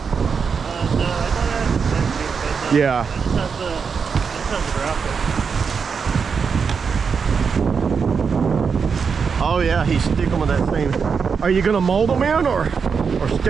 I thought Yeah. It just has the Oh yeah, he's sticking with that thing. Are you gonna mold them in or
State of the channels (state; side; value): quieter; left; 5.9 dB